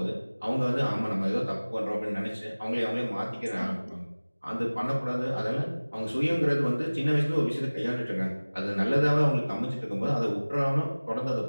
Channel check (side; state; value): both; inverted; correlation -1.00